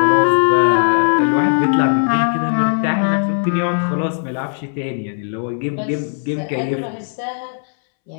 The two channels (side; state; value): right; silent; 68 dB below the other